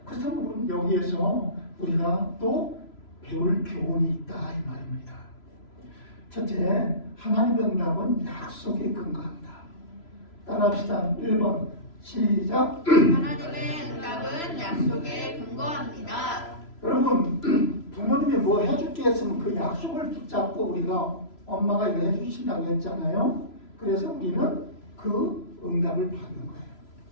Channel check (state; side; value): late; right; 3.0 ms